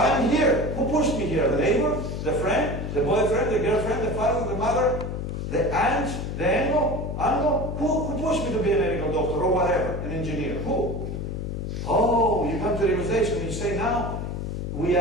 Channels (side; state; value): left; noise; hum, 4 dB below the sound